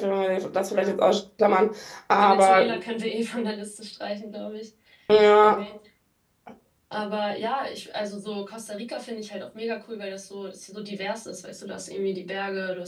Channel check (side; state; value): both; identical; correlation 1.00